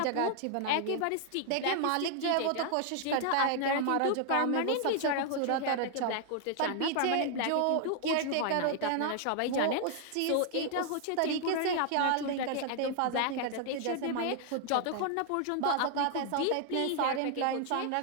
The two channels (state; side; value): different; both; correlation 0.00